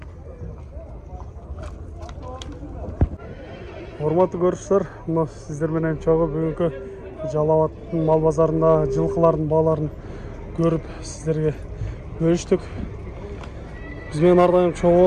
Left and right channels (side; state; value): both; identical; correlation 1.00